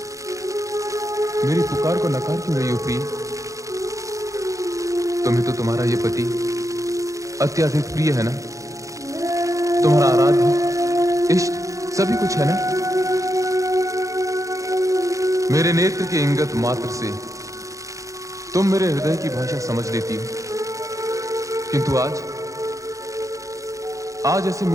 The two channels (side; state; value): left; late; 0.16 ms